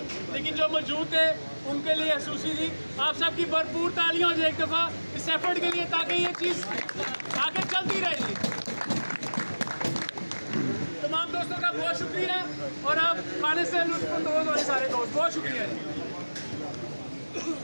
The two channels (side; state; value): both; inverted; correlation -1.00